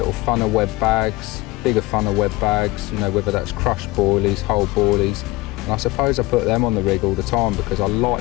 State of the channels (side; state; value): right; quieter; 20.2 dB